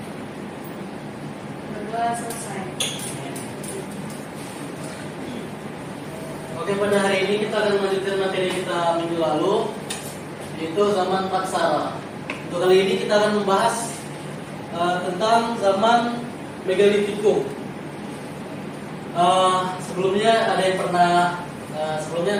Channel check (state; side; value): identical; both; correlation 1.00